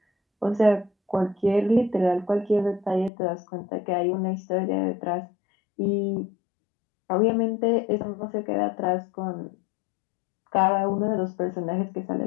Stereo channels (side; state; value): right; drops out; at 3.1 s